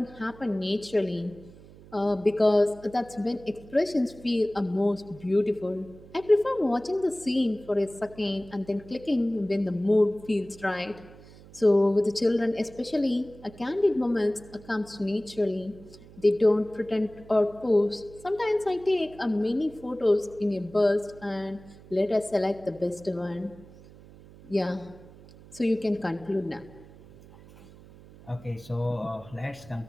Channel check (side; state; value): right; noise; hum, 21 dB below the sound